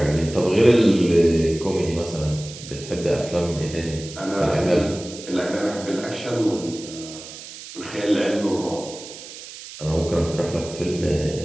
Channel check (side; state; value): right; noise; hiss, 14 dB below the sound